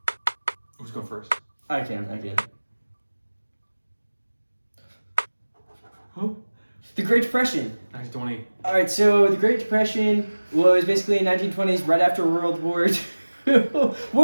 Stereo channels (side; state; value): both; inverted; correlation -1.00